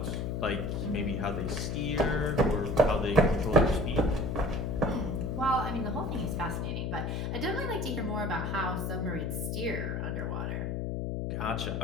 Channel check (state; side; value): noise; left; hum, 1 dB below the sound